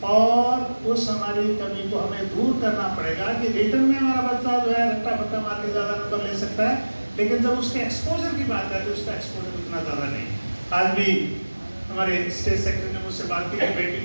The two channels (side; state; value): both; inverted; correlation -1.00